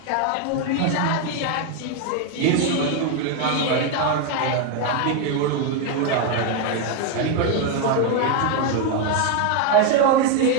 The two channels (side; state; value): both; different; correlation 0.01